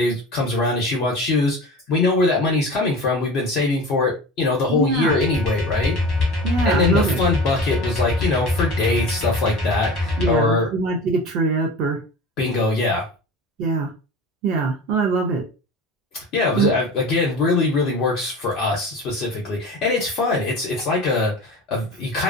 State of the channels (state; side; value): normal; both; correlation 0.34